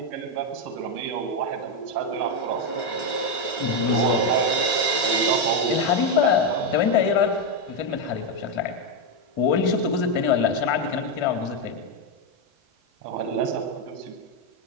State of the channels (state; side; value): late; right; 1.3 ms